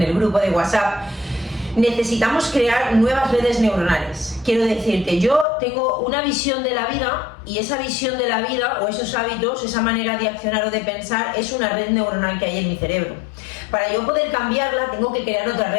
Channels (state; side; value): drops out; right; at 5.5 s